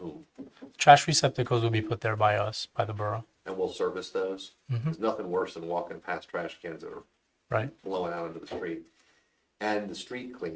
Trash receptacles will be put there by us, by the borough. And we'll service those? There's nothing worse than walking past trash cans that are blowing out into the street. And the street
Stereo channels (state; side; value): identical; both; correlation 1.00